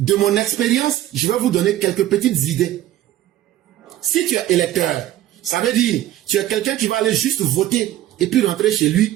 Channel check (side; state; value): left; quieter; 13.6 dB